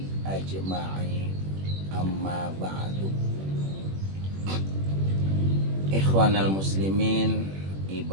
ajma'in, amma ba'du. Ikhwanal muslimin,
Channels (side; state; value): left; late; 21 ms